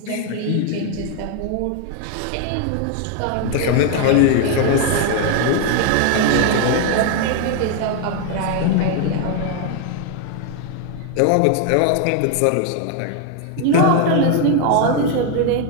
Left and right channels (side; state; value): both; different; correlation 0.01